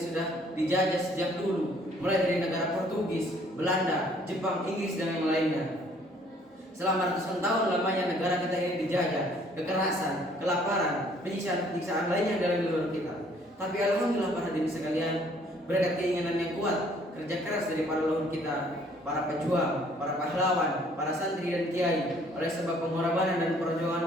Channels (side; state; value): both; normal; correlation 0.60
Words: sudah dijajah sejak dulu, mulai dari negara Portugis, Belanda, Jepang, Inggris, dan yang lainnya. Selama ratusan tahun lamanya negara kita ini dijajah, kekerasan, kelaparan, penyiksaan lainnya dalam luar kita. Tapi alhamdulillah para hadirin sekalian, berkat keinginan yang kuat, kerja keras dari para leluhur kita, para pejuang, para pahlawan, para santri dan kiai, oleh sebab pengorbanan dan perjuangan